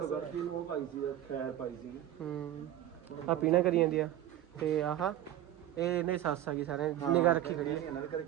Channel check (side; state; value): left; quieter; 12.6 dB